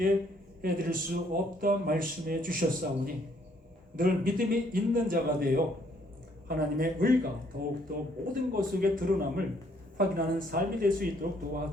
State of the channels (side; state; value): both; normal; correlation 0.66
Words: 해드릴 수 없다 말씀해 주셨사오니 늘 믿음이 있는 자가 되어 하나님의 의가 더욱더 모든 것 속에 드러남을 확인하는 삶이 될 수 있도록